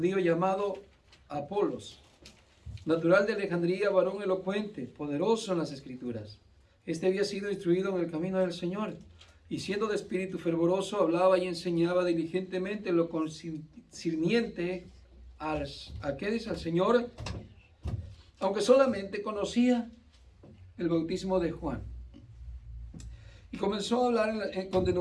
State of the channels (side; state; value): both; identical; correlation 1.00